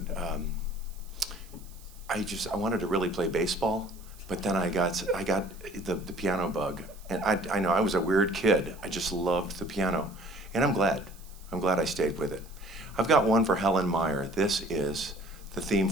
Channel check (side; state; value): right; noise; hiss, 23 dB below the sound